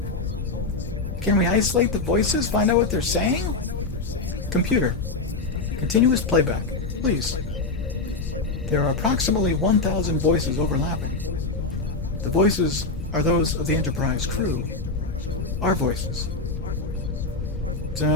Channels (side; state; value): right; quieter; 3.6 dB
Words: Can we isolate the voices? Find out what they're saying? Computer, continuous playback, please. There are approximately 1,000 voices overlapping. The voices are those of the Enterprise crew. Our voices.